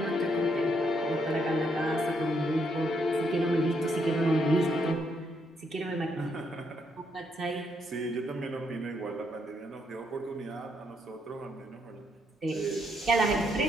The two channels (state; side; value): normal; both; correlation 0.75